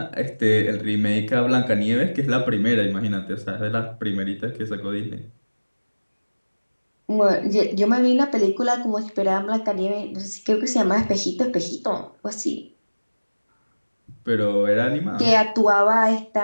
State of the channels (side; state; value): both; inverted; correlation -1.00